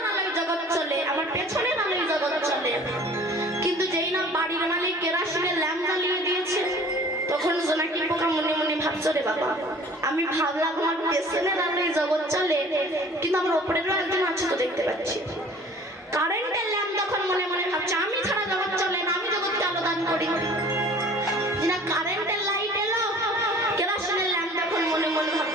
আলোয় জগৎ চলে, আমার পেছনের আলোয় জগৎ চলে। কিন্তু যেই না বাড়ির মালিক কেরাসিনের ল্যাম্প জ্বালিয়ে দিয়েছে তখন জোনাকি পোকা মনে মনে ভাবছে রে বাবা আমি ভাবলাম আমার পেছনের আলোয় জগৎ চলে কিন্তু আমার ওপরেরও একজন আছে তো দেখতে পাচ্ছি। কারেন্টের ল্যাম্প তখন মনে মনে ভাবছে আমি ছাড়া জগৎ চলে না, আমি জগৎকে আলো দান করি। না কারেন্টের লাইট এলো কেরাসিনের ল্যাম্প তখন মনে মনে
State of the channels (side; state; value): both; normal; correlation 0.48